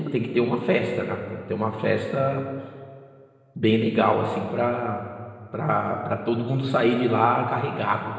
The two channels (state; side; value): identical; both; correlation 1.00